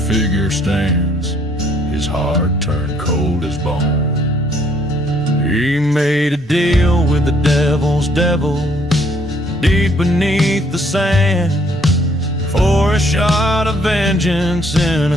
figure stands, his heart turned cold as bone. He made a deal with the devil's devil deep beneath the sand, for a shot of vengeance in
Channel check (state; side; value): normal; both; correlation 0.65